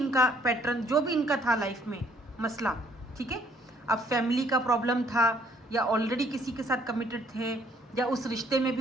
पैटर्न, जो भी इनका था लाइफ में मसला, ठीक है, अब फैमिली का प्रॉब्लम था या ऑलरेडी किसी के साथ कमिटेड थे या उस रिश्ते में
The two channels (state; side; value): normal; both; correlation 0.64